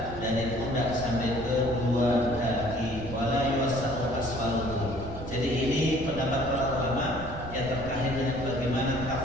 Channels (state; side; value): noise; right; rumble, 10 dB below the sound